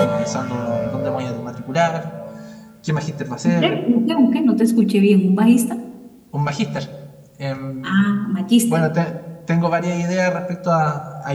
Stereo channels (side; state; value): both; identical; correlation 1.00